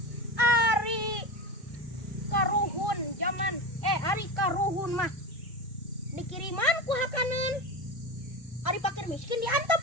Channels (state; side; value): normal; both; correlation 0.23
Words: Ari karuhun zaman ari karuhun mah dikiriman ku hakaneun. Ari pakir miskin diantep.